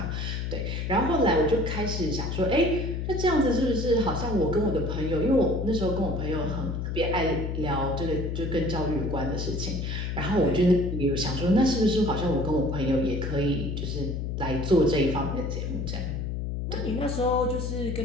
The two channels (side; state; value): left; noise; hum, 3 dB below the sound